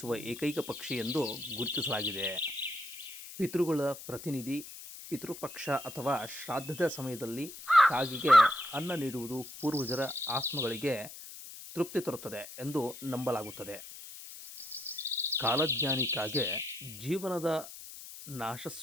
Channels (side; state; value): left; noise; hiss, 13 dB below the sound